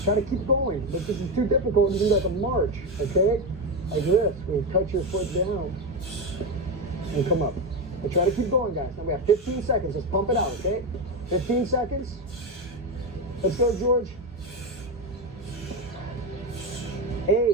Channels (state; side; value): normal; both; correlation 0.13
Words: Try to keep going. But this is too difficult. You can do like a march, okay? Like this. You cut your foot down and come up. But try to keep going, guys. Now we have 15 seconds. Let's pump it out, okay? 15 seconds. Let's go, George.